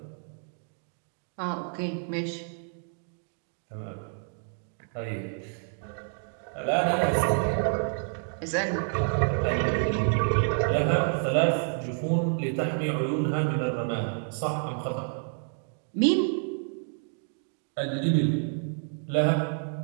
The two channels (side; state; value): left; silent; 56 dB below the other